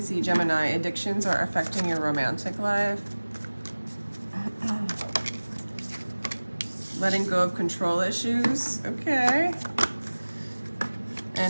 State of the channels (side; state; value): both; inverted; correlation -1.00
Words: Gemini. Addictions are affecting your romantic life. Letting go of control issues. Okay.